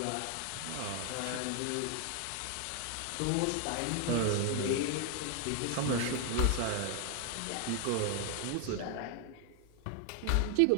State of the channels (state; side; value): different; both; correlation 0.00